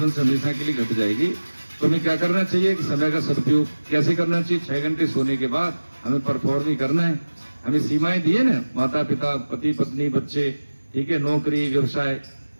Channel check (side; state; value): both; inverted; correlation -1.00